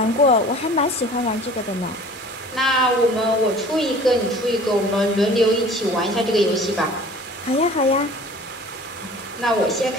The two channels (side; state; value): both; normal; correlation 0.46